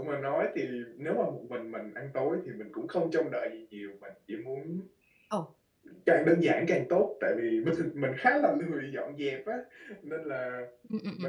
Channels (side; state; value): both; identical; correlation 1.00